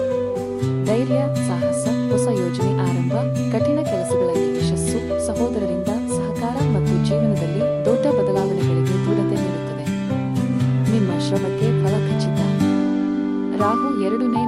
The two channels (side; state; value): right; noise; hum, 26 dB below the sound